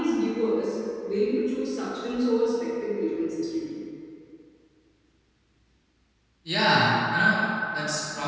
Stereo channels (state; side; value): identical; both; correlation 1.00